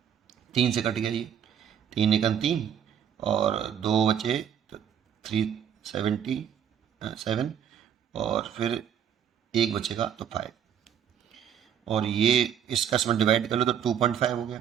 3 से कट गया ये, 3 एकम 3, और 2 बचे तो 377, और फिर 1 बचेगा तो 5, और ये इसका इसमें डिवाइड कर लो तो 2.5 हो गया।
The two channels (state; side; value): quieter; left; 8.8 dB